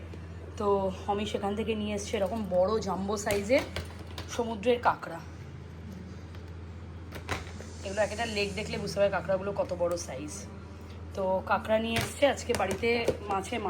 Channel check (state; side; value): identical; both; correlation 1.00